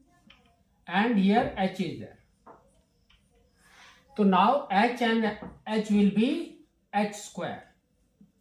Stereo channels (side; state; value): both; identical; correlation 1.00